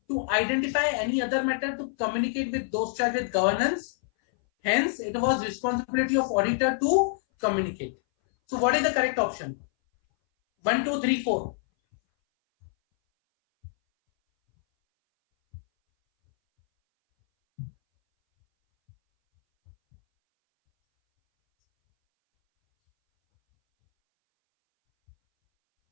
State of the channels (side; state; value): right; silent; 59 dB below the other